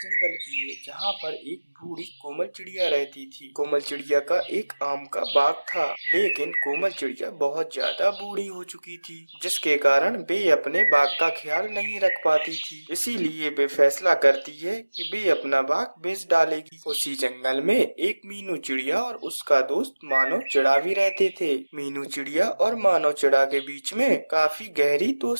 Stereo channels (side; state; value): both; inverted; correlation -1.00